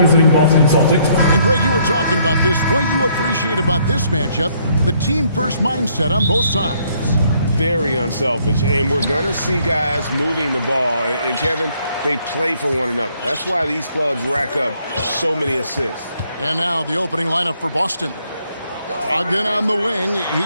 Boston Celtics. And Greg, you were talking about this. What you appreciate about this matchup, the team-first mindset on both sides. Very unselfish, and we're going to see guys moving the ball. And Kevin, they play for one another. That's why these clubs rack up so many assists. And now the opening lineup for Boston. Again on the wing,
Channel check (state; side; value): inverted; both; correlation -0.67